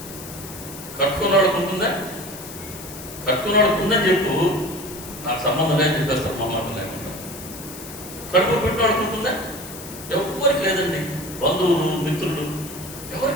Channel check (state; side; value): noise; left; hiss, 13 dB below the sound